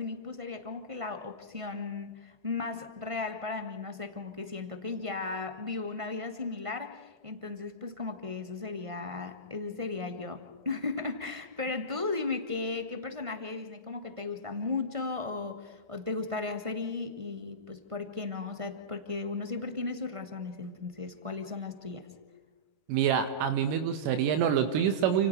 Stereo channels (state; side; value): late; left; 1.5 ms